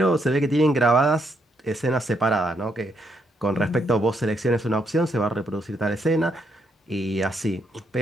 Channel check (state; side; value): normal; both; correlation 0.76